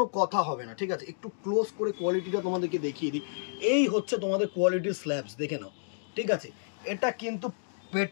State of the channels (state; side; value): silent; right; digital silence